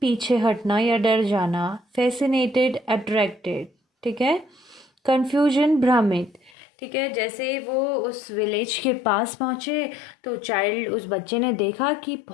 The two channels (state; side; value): drops out; right; at 6.5 s